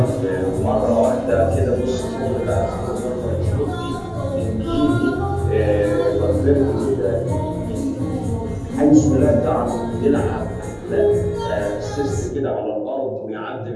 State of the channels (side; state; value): both; identical; correlation 1.00